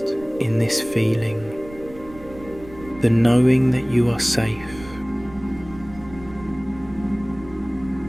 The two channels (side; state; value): right; noise; rumble, 18 dB below the sound